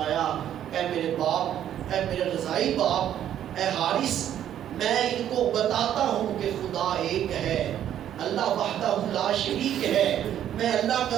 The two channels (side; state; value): left; quieter; 10.7 dB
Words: اے میرے باپ، اے میرے رضائی باپ، اے حارث، میں ان کو بتاتا ہوں کہ خدا ایک ہے، اللہ وحدہ لا شریک ہے، میں اللہ